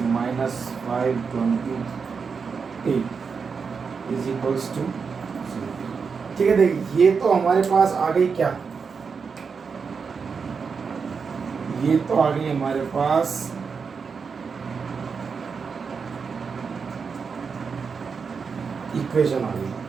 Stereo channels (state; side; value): quieter; left; 5.6 dB